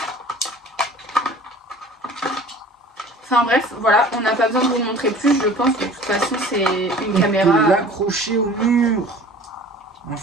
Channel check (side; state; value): both; normal; correlation 0.45